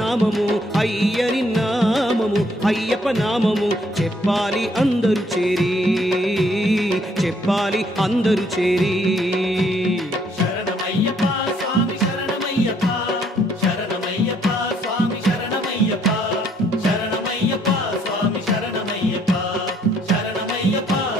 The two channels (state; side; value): normal; both; correlation 0.67